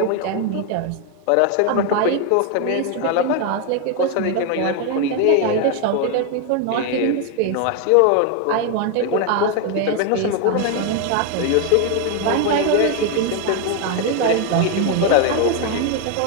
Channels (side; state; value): both; different; correlation 0.01